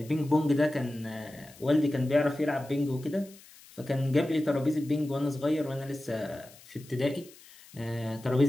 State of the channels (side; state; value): left; noise; hiss, 22 dB below the sound